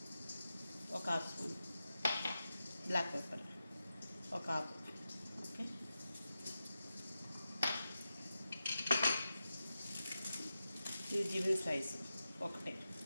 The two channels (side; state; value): both; inverted; correlation -0.91